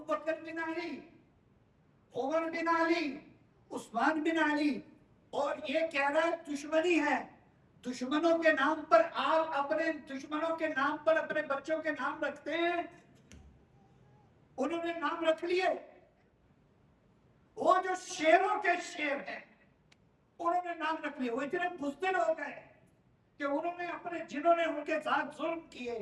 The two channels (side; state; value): both; identical; correlation 1.00